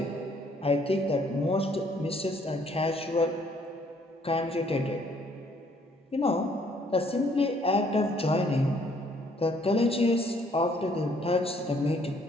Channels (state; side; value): normal; both; correlation 0.64